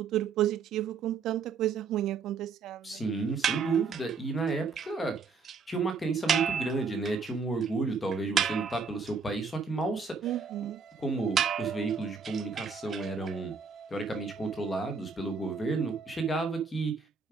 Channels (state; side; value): quieter; left; 5.2 dB